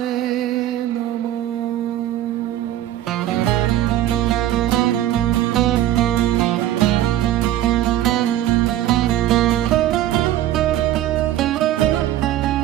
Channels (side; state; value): left; quieter; 13.0 dB